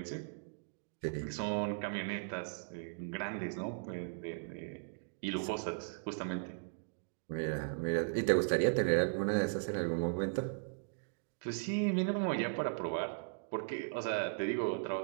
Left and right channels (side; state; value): left; silent; digital silence